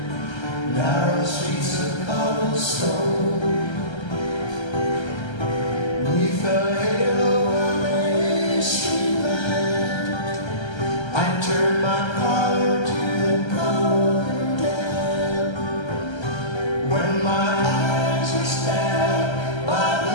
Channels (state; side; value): late; right; 1.3 ms